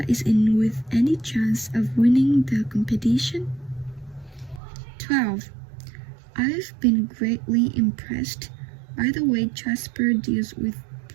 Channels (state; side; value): drops out; left; at 4.6 s